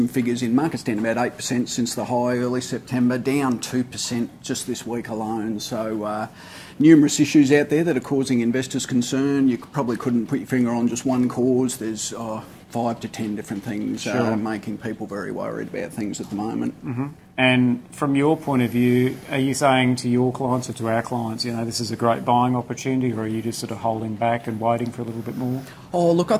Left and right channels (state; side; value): identical; both; correlation 1.00